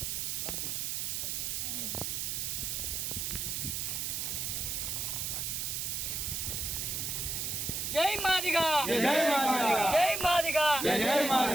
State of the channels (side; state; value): right; noise; hiss, 1 dB below the sound